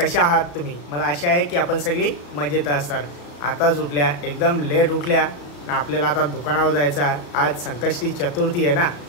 आहात तुम्ही? मला आशा आहे की आपण सगळी मजेत असाल. आताच उठल्या, एकदम लेट उठल्या ना. आपल्याला आता दुकानावर जायचं आहे. आज संकष्टी चतुर्थी आहे ना,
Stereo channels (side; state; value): right; late; 34 ms